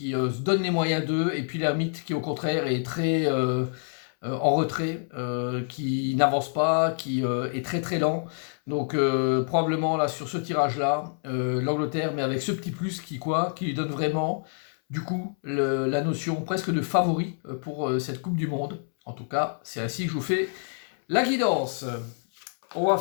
se donne les moyens d'eux, et puis l'ermite qui au contraire est très en retrait, qui n'avance pas, qui est très très lent. Donc probablement là sur ce tirage-là, l'Angleterre, mais avec ce petit plus qui lui donne vraiment du coup la notion presque de favori pour cette Coupe du Monde. En tout cas, c'est ainsi que je vous fais la guidance. On va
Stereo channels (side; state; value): right; silent; 60 dB below the other